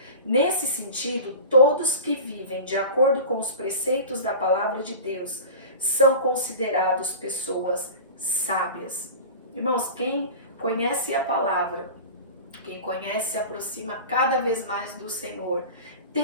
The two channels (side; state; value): both; inverted; correlation -0.34